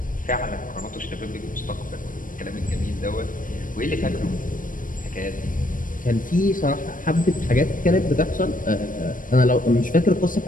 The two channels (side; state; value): right; late; 0.39 ms